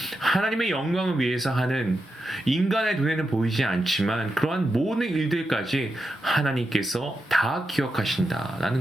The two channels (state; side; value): normal; both; correlation 0.87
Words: 하나님의 영광을 위해서 하는, 인간의 눈에는 보이지 않지만 그러한 모든 일들까지 하나님께서 다